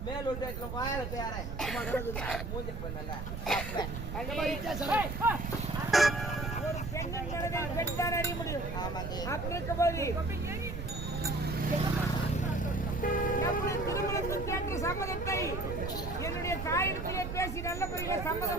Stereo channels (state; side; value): noise; right; rumble, 5 dB below the sound